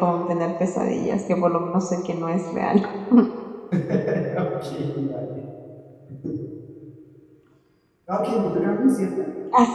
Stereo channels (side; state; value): both; identical; correlation 1.00